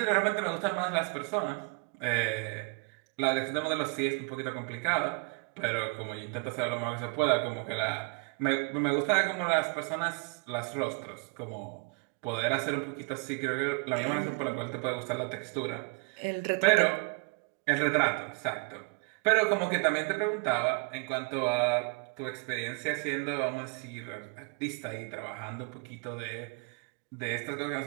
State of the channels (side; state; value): left; quieter; 33.7 dB